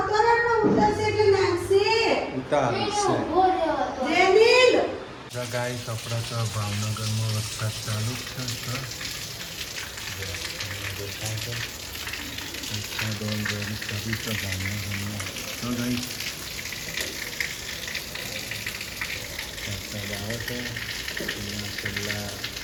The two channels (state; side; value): identical; both; correlation 1.00